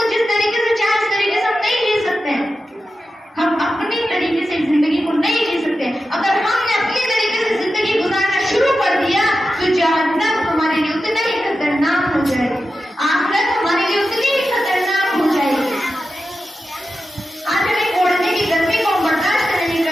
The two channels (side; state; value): both; normal; correlation 0.91